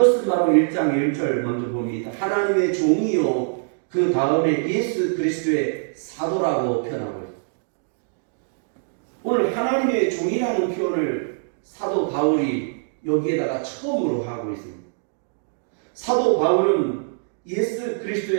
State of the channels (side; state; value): left; silent; digital silence